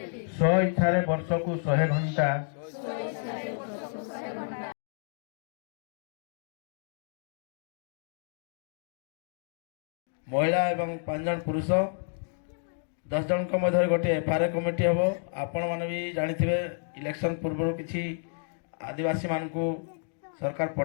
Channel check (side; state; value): right; silent; digital silence